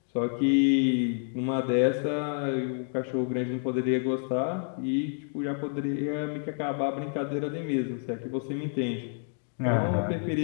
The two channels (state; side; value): silent; right; 59 dB below the other